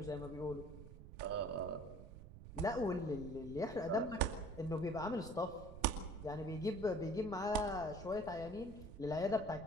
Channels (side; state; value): right; noise; rumble, 14 dB below the sound